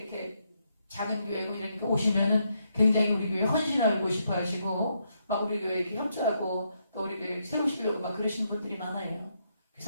작은 교회고 이러니까 오시면은 굉장히 우리 교회 헌신하고 싶어 하시고 막 우리 교회 이렇게 협조하고 또 우리 교회 세우시려고 막 그러시는 분들이 많아요.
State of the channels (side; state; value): both; inverted; correlation -0.78